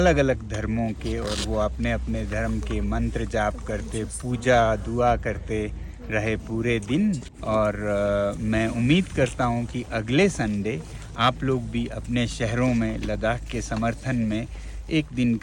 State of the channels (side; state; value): both; identical; correlation 1.00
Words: अलग धर्मों के। और वो अपने अपने धर्म के मंत्र जाप करते, पूजा दुआ करते रहे पूरे दिन। और मैं उम्मीद करता हूँ कि अगले संडे आप लोग भी अपने शहरों में लद्दाख के समर्थन में एक दिन